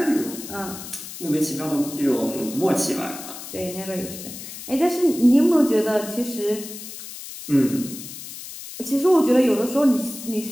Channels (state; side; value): noise; left; hiss, 12 dB below the sound